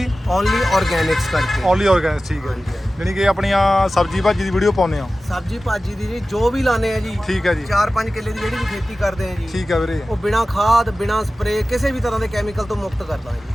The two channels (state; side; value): normal; both; correlation 0.96